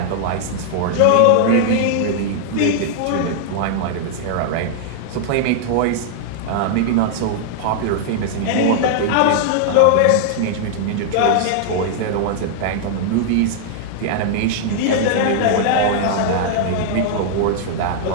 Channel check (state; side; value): different; both; correlation -0.01